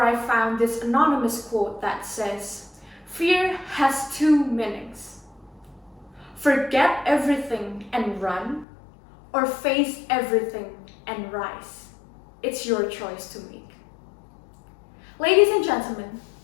I found this anonymous quote that says, "Fear has two meanings. Forget everything and run, or face everything and rise. It's your choice to make." Ladies and gentlemen,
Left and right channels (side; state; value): right; drops out; at 8.7 s